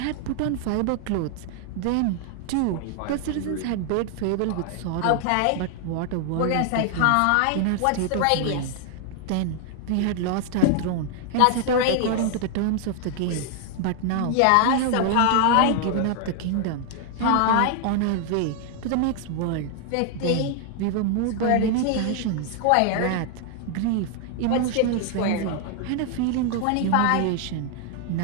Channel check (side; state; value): both; different; correlation 0.00